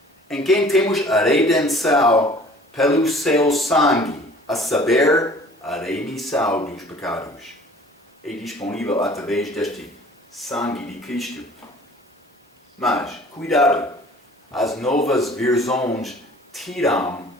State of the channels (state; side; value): normal; both; correlation 0.49